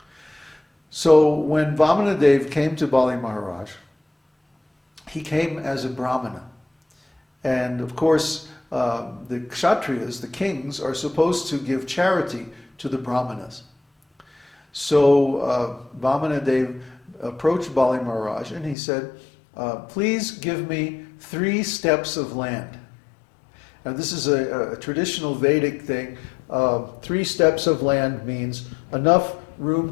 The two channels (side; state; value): right; drops out; at 18.8 s